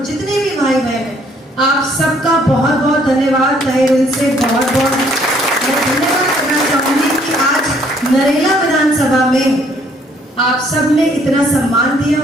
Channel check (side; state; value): both; normal; correlation 0.64